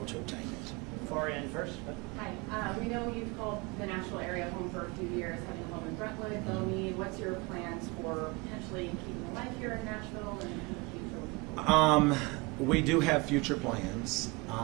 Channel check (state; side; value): quieter; left; 25.6 dB